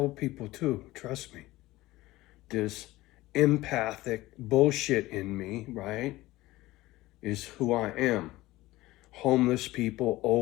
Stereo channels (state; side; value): quieter; right; 18.1 dB